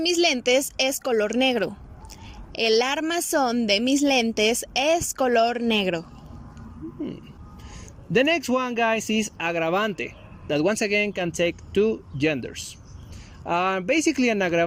lentes es color negro. El armazón de mis lentes es color negro. the next one, guys, is agravante, that once again can take two genders. Basically, an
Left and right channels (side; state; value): both; identical; correlation 1.00